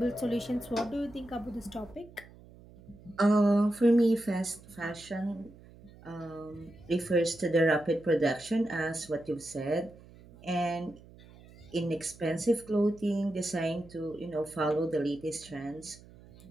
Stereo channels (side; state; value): right; noise; hum, 22 dB below the sound